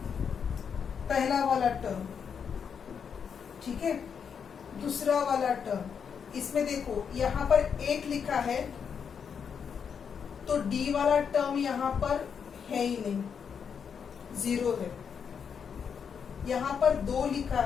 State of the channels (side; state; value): right; quieter; 6.9 dB